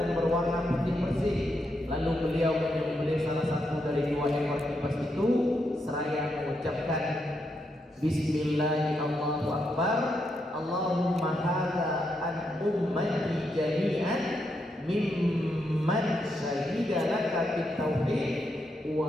berwarna putih bersih. Lalu beliau menyembelih salah satu dari 2 ekor lipas itu seraya mengucapkan Bismillahirrahmanirrahim. Allahumma hadza an ummati jami'an mimman syahida laka bit tauhid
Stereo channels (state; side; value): normal; both; correlation 0.81